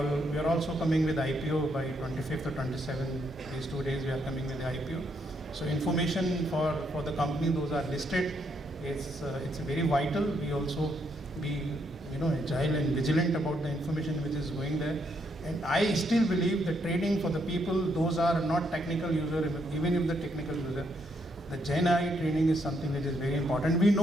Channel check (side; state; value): both; normal; correlation 0.75